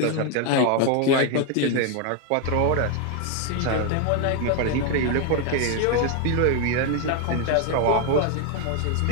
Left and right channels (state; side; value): different; both; correlation 0.01